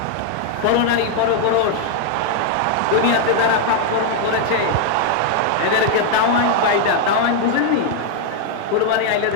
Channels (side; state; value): both; different; correlation 0.00